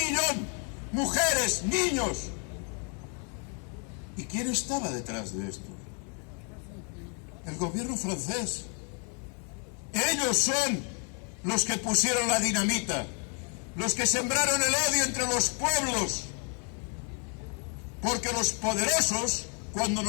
mujeres, niños. ¿Y quién estaba detrás de esto? El gobierno francés. Ellos son los que pusieron la dinamita, los que sembraron el odio entre los pueblos, porque los poderosos, cuando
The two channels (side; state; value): right; quieter; 39.8 dB